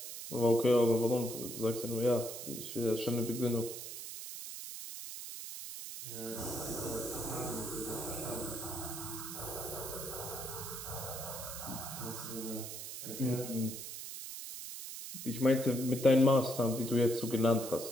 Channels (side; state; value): right; noise; hiss, 8 dB below the sound